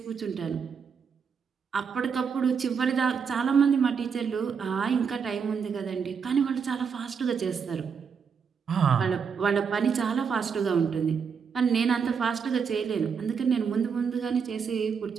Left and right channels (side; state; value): left; quieter; 6.3 dB